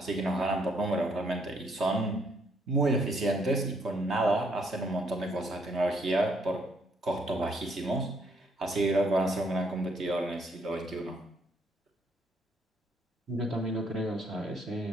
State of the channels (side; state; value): both; normal; correlation 0.70